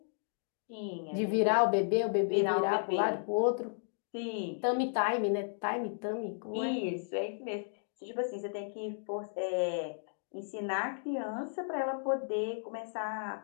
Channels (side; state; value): right; silent; digital silence